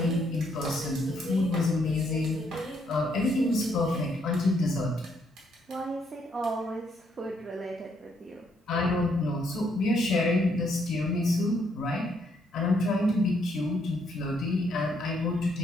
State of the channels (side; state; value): both; normal; correlation 0.72